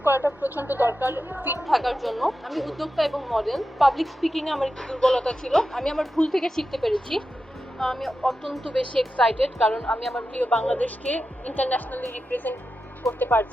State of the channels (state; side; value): normal; both; correlation 0.90